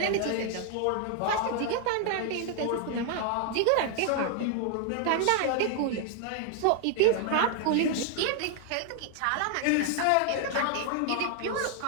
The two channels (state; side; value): different; both; correlation 0.00